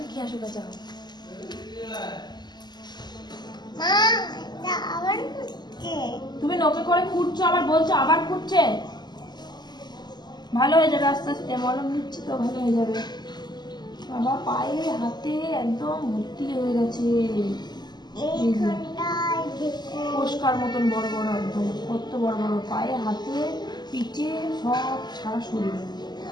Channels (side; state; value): right; late; 0.21 ms